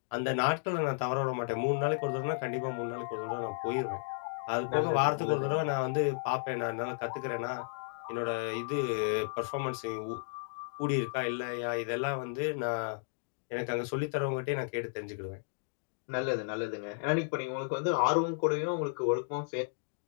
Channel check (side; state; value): right; silent; digital silence